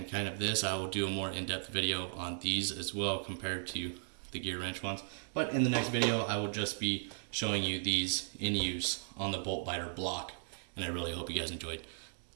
kind of this. I will do a more in-depth video on these as well compared to the Gearwrench ones. But in the next video, I will just be showing you these in use on the bolt biter block, and I really hope you guys enjoyed.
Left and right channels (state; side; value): silent; left; digital silence